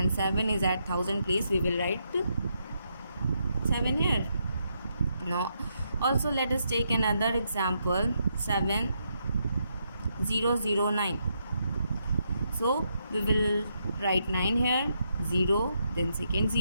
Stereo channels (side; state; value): both; inverted; correlation -0.80